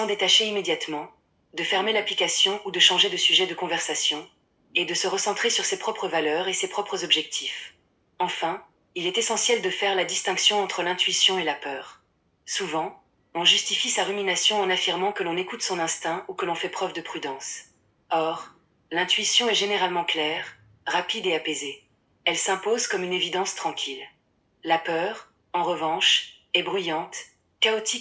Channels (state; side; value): identical; both; correlation 1.00